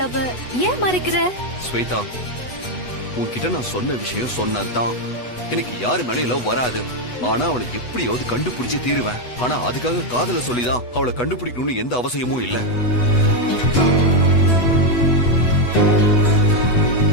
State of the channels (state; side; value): late; right; 8.1 ms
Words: ஏன் மறைக்கிற? ஸ்வேதா, உன்கிட்ட நான் சொன்ன விஷயம் சொன்னதுதான். எனக்கு யாரு மேலயும் லவ் வராது. ஆனா அவளை எப்படியாவது கண்டுபிடிச்சு தீருவேன். ஆனா அதுக்காக காதல சொல்லிதான் அவளை கண்டுபிடிக்கணும்னு எந்த அவசியமும் இல்ல.